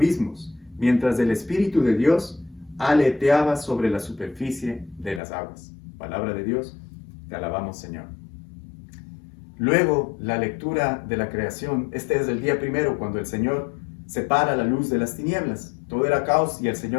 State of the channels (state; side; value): drops out; right; at 5.2 s